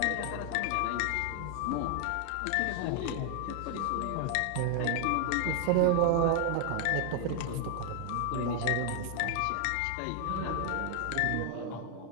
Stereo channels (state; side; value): different; both; correlation 0.00